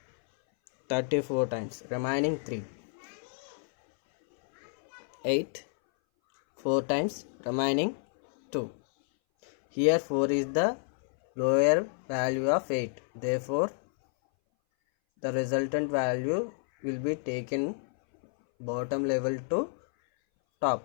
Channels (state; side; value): silent; right; 58 dB below the other